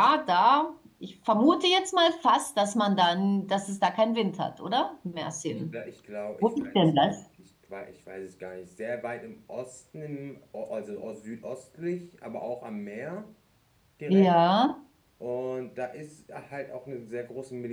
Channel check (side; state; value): both; identical; correlation 1.00